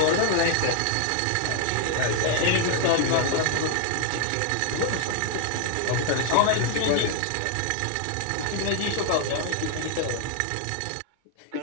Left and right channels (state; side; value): different; both; correlation 0.00